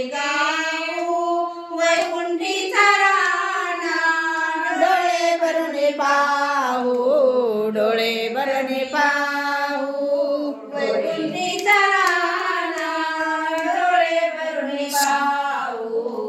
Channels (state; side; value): identical; both; correlation 1.00